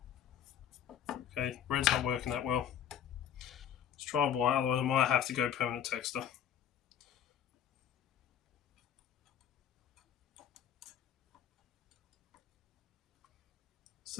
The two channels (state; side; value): quieter; right; 9.4 dB